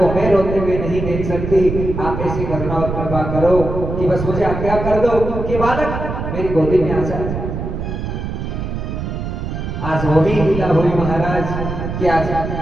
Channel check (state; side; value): noise; right; rumble, 5 dB below the sound